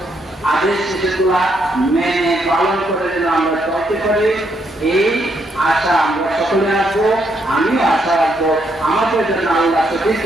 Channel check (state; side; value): normal; both; correlation 0.76